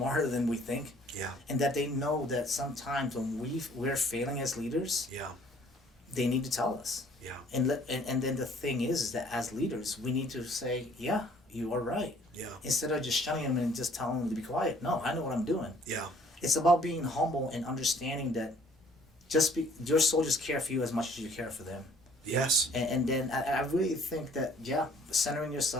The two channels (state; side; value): normal; both; correlation 0.58